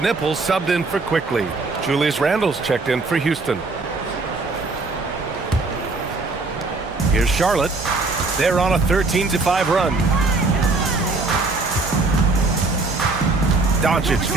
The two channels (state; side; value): quieter; left; 3.6 dB